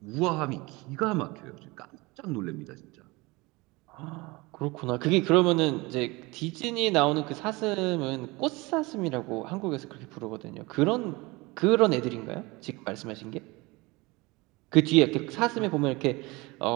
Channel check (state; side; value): quieter; left; 23.7 dB